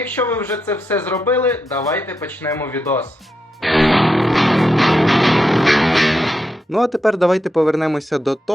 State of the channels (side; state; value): both; normal; correlation 0.85